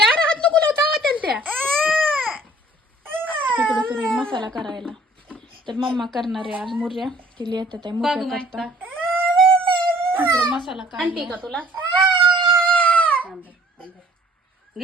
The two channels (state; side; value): normal; both; correlation 0.56